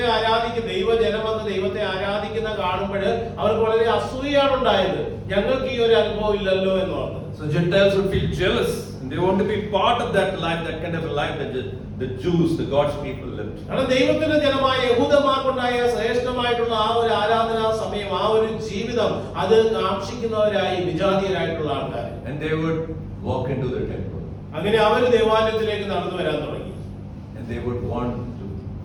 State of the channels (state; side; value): identical; both; correlation 1.00